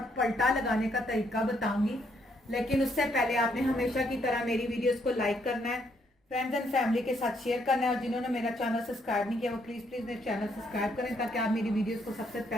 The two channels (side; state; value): both; normal; correlation 0.72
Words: पल्टा लगाने का तरीका बताऊंगी, लेकिन उससे पहले आपने हमेशा की तरह मेरी वीडियोस को लाइक करना है, फ्रेंड्स एंड फैमिली के साथ शेयर करना है और जिन्होंने मेरा चैनल सब्सक्राइब नहीं किया वो प्लीज़ मेरे चैनल सब्सक्राइब करें ताकि आप मेरी वीडियोज़ को सबसे